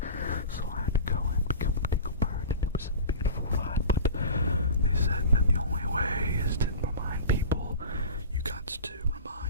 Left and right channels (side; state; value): both; inverted; correlation -0.35